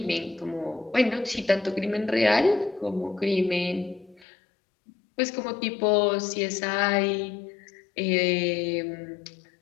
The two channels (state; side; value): drops out; right; at 4.2 s